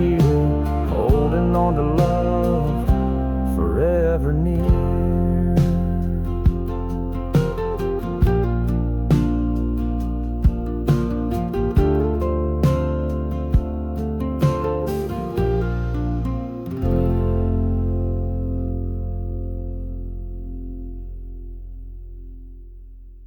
here, holding on to love forever near.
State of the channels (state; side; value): identical; both; correlation 1.00